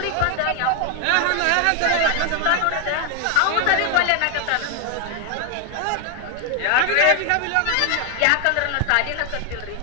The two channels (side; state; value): both; different; correlation 0.01